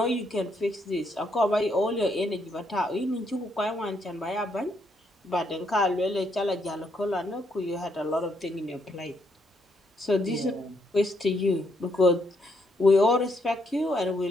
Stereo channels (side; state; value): both; normal; correlation 0.75